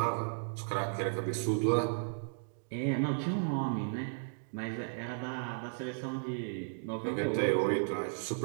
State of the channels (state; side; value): silent; left; digital silence